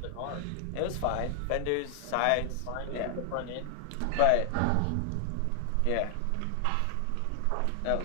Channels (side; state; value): both; different; correlation 0.00